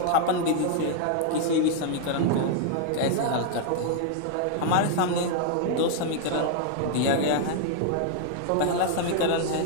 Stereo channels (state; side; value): different; both; correlation 0.00